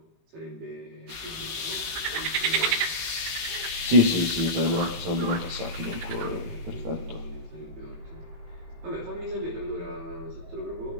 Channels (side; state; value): left; late; 18 ms